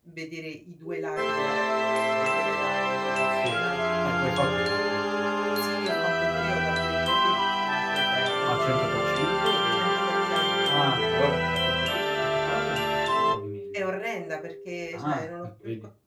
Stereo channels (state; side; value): identical; both; correlation 1.00